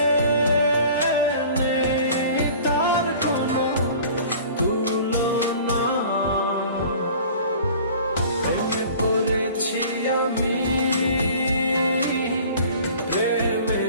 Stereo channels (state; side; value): inverted; both; correlation -0.46